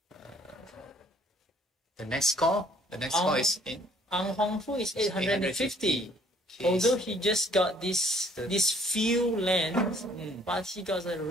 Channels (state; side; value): normal; both; correlation 0.60